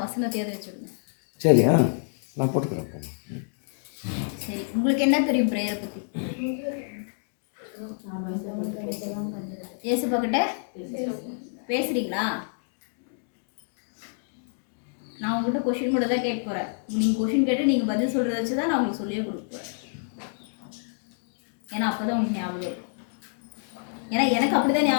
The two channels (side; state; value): right; silent; digital silence